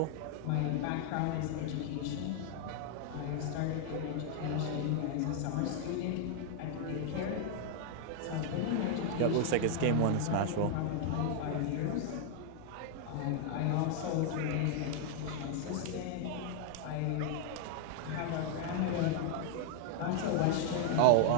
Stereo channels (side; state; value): both; different; correlation 0.00